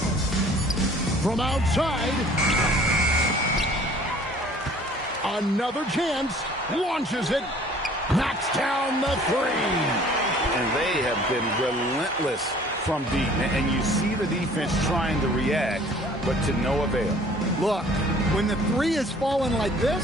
from outside. Another chance. Launches it. Knocks down the three. And they have been relentless from deep. And you see the defense trying to react, but to no avail. Look, when the three is falling like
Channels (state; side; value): normal; both; correlation 0.52